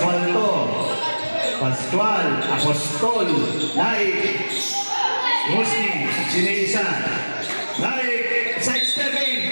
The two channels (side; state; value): both; inverted; correlation -1.00